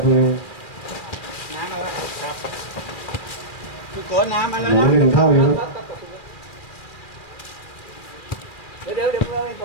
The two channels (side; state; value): right; late; 2.4 ms